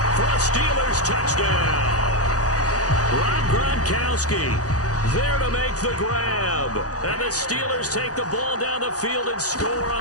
for a Steelers touchdown. Rob Gronkowski there to make the grab. And the Steelers take the ball down the field and score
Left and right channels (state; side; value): late; right; 0.67 ms